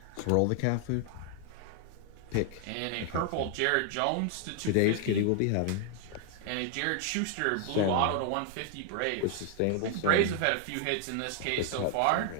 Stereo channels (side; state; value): both; different; correlation 0.00